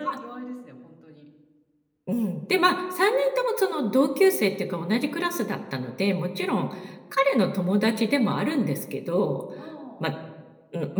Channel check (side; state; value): both; identical; correlation 1.00